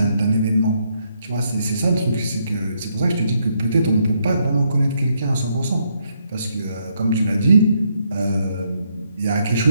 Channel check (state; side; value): inverted; both; correlation -0.75